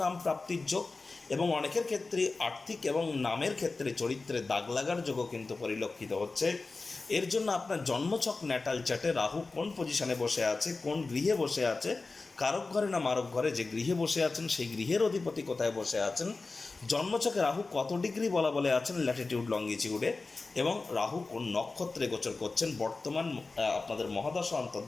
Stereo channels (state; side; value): quieter; right; 3.7 dB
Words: নাম প্রাপ্তির যোগ এবং অনেকের ক্ষেত্রে আর্থিক এবং নামের ক্ষেত্রে চরিত্রে দাগ লাগার যোগও কিন্তু পরিলক্ষিত হচ্ছে। এর জন্য আপনার জন্মছক ন্যাটাল চার্টে রাহু কোন পজিশনে বসে আছে, কোন গৃহে বসে আছে, কারক ঘরে না মারক ঘরে, যে গৃহে বসে আছেন সেই গৃহের অধিপতি কোথায় বসে আছেন, জন্মছকে রাহু কত ডিগ্রি বলা বলে আছেন ল্যাটিটিউড লঙ্গিটিউডে, এবং রাহু কোন নক্ষত্রে গোচর করছেন, বর্তমান আপনাদের মহাদশা,